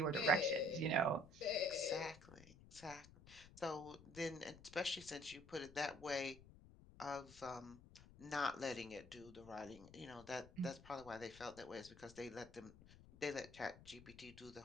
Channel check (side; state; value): left; noise; rumble, 19 dB below the sound